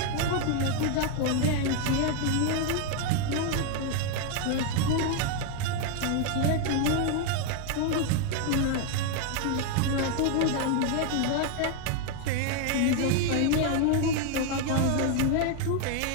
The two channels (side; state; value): both; different; correlation 0.01